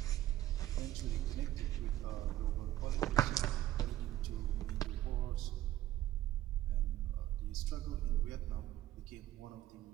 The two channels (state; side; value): quieter; left; 13.9 dB